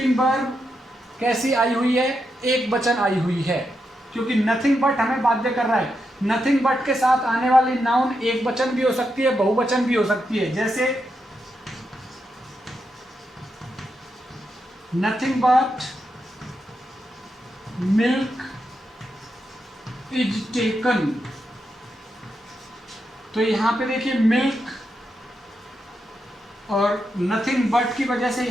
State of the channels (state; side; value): normal; both; correlation 0.85